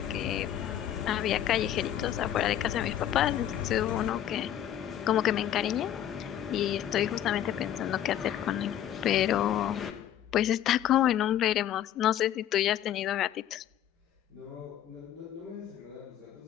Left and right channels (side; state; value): right; quieter; 11.1 dB